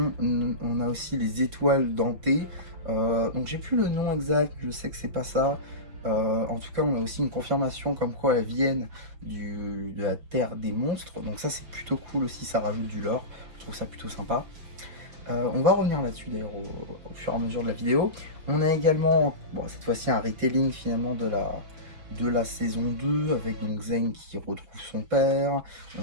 a aussi les étoiles dentées. Donc j'ai plus le nom exact, je sais que c'est pas ça. En tout cas, on a aussi une confirmation comme quoi elles viennent de la terre des monstres. Donc ça, c'est plutôt cool aussi, ça rajoute du lore. Je trouve ça plutôt sympa. On va revenir là-dessus d'ailleurs au fur et à mesure de la vidéo. On a également, cette fois-ci, un retelling finalement de la saison 2 avec donc Zane qui retrouve son père.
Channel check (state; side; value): late; left; 5.8 ms